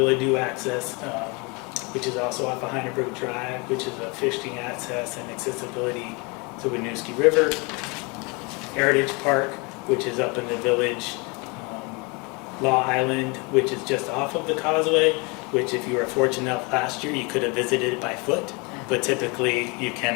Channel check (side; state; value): right; quieter; 29.3 dB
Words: access, which is also off of Heineberg Drive, which is a fishing access and accessibility to Winooski River. Heritage Park, which is up in the village. Law Island, which is just off of the Causeway, which if you were fortunate enough last year, you could have visited it by foot, but typically you